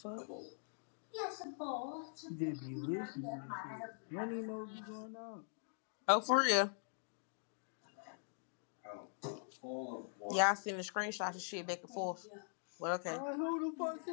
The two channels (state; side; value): silent; right; digital silence